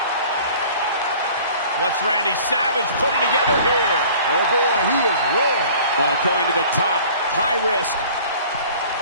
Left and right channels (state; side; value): inverted; both; correlation -0.48